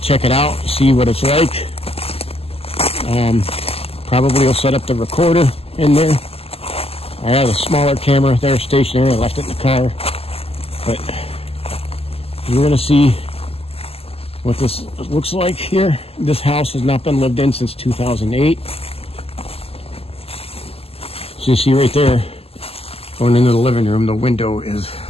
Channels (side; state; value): right; late; 0.29 ms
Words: check it out, see what it's like. Probably will set up the recorder in there. I have a smaller camera there, stationary. I left it in the car, but we're going to see what this looks like here. This house has not been lived in since 2008. So you see right there, going into the living room, the window is